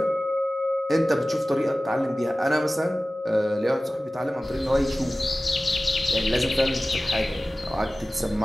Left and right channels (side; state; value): both; normal; correlation 0.97